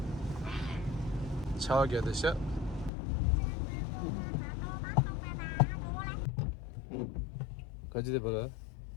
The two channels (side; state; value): right; drops out; at 2.9 s